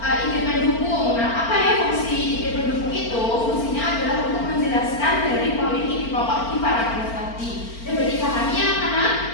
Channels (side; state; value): right; late; 4.4 ms